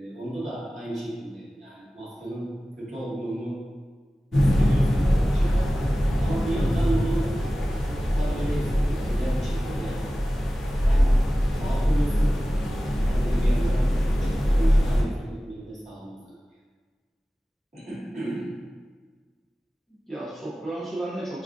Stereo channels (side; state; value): both; normal; correlation 0.96